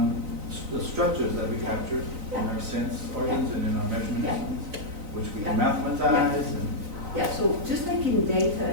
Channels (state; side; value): late; left; 4.0 ms